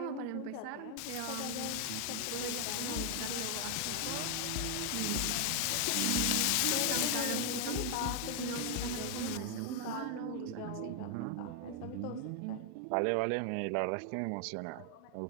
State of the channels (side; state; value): both; different; correlation 0.00